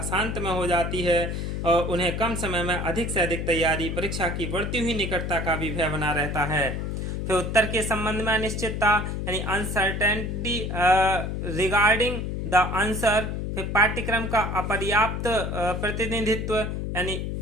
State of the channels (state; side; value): noise; left; hum, 3 dB below the sound